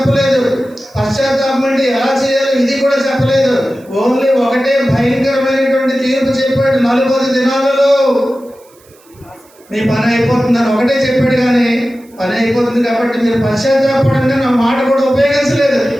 పశ్చాత్తాపం అంటే ఎలా చేయాలో ఇది కూడా చెప్పలేదు. ఓన్లీ ఒకటే భయంకరమైనటువంటి తీర్పు చెప్పాడు. 40 దినాలలో మీ పని అయిపోతుందని ఒకటే చెప్పాడు. కానీ పని అయిపోతుంది కాబట్టి మీరు పశ్చాత్తాపడంగా నా మాట కూడా ఉపయోగించలేదు.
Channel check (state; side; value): noise; right; hiss, 30 dB below the sound